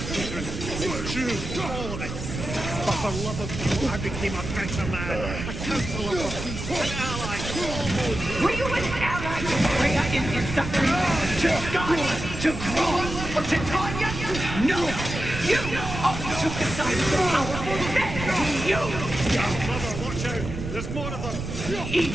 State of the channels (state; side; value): noise; right; rumble, 6 dB below the sound